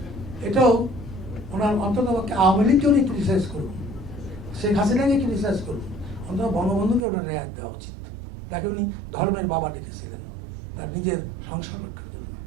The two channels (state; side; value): drops out; left; at 7.1 s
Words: এটাও ওনার অন্তত আওয়ামী লীগকে উনি ক্রিটিসাইজ করুন, শেখ হাসিনাকে ক্রিটিসাইজ করুন, অন্তত বঙ্গবন্ধুকে ওনার রেয়াত দেওয়া উচিত। তাকে উনি ধর্মের বাবা ডেকেছিলেন, তার নিজের সংসার রক্ষা করলেন।